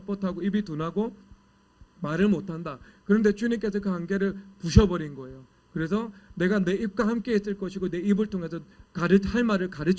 입이 둔하고 말을 못한다. 그런데 주님께서 그 한계를 부셔버린 거예요. 그래서 내가 내 입과 함께 있을 것이고 내 입을 통해서 할 말을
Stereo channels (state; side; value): identical; both; correlation 1.00